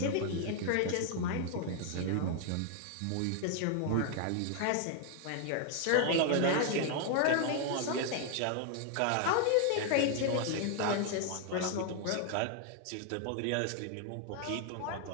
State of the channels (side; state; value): both; different; correlation 0.00